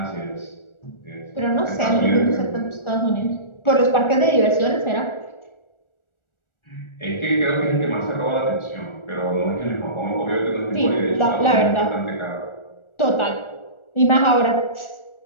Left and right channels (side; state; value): right; late; 1.4 ms